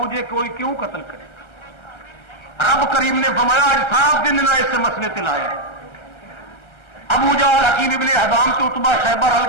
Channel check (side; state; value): right; late; 1.3 ms